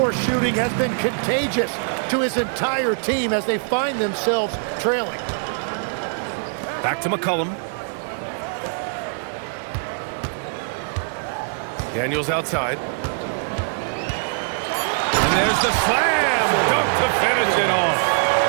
shooting has been contagious to his entire team as they find themselves trailing. Back to McCollum. Daniels outside. And there's the slam dunk to finish it off.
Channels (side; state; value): left; silent; 64 dB below the other